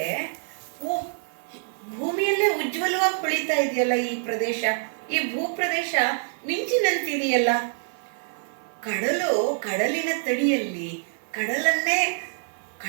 ಓ, ಭೂಮಿಯಲ್ಲೇ ಉಜ್ವಲವಾಗಿ ಹೊಳಿತಾ ಇದೆಯಲ್ಲ ಈ ಪ್ರದೇಶ, ಈ ಭೂಪ್ರದೇಶ ಮಿಂಚಿನಂತಿದೆಯಲ್ಲ. ಕಡಲಿನ ತಡಿಯಲ್ಲಿ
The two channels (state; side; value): silent; left; digital silence